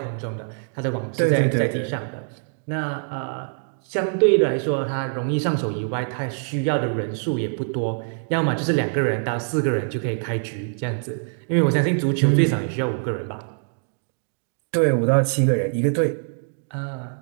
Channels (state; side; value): silent; left; digital silence